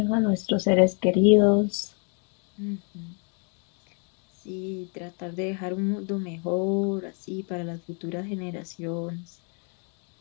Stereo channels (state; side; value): quieter; right; 39.4 dB